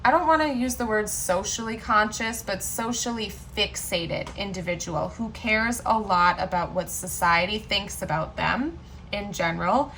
I don't want to use the word socially conscious, but socially fixated individual who cares a lot about what society thinks about them in general.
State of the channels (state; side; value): identical; both; correlation 1.00